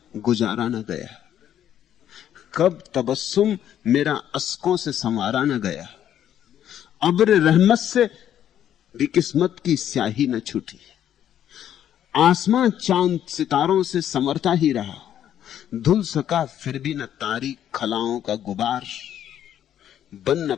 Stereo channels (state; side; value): quieter; right; 10.5 dB